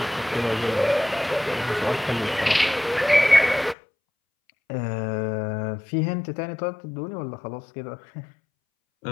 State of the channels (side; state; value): right; drops out; at 3.8 s